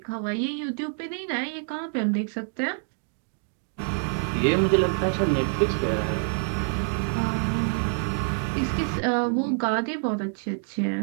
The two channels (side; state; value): left; silent; 56 dB below the other